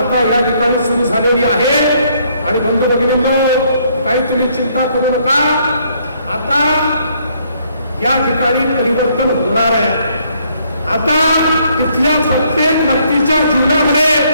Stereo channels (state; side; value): inverted; both; correlation -0.67